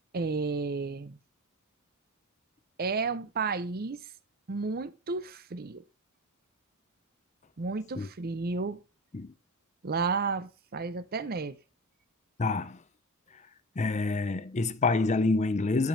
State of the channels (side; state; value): both; normal; correlation 0.33